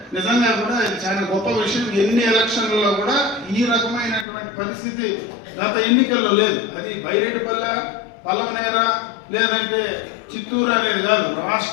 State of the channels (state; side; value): drops out; right; at 4.2 s